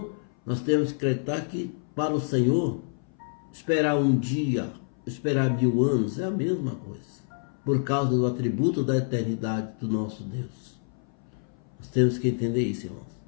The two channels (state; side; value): silent; right; 58 dB below the other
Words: nós temos que acreditar que para o Senhor, esperar um dia, esperar 1000 anos é a mesma coisa. Por causa do atributo da eternidade do nosso Deus. Nós temos que entender isso, irmãos.